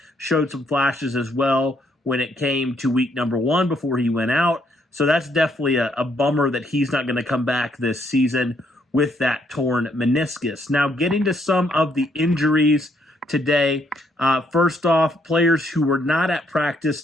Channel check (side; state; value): both; normal; correlation 0.72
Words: showed some flashes as well when it came to week number 1 before he went out. So that's definitely a bummer that he's not going to come back this season with that torn meniscus. Now, getting to some of the injuries today. First off, players who were not at practice